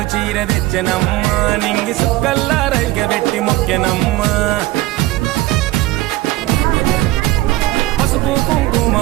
చీర తెచ్చనమ్మ నింగి సుక్కల్లా రైగబెట్టి మొక్కెనమ్మ పసుపు కుంకుమ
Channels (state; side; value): quieter; left; 17.5 dB